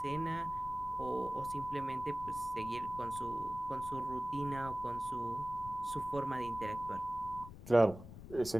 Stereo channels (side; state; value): left; noise; rumble, 13 dB below the sound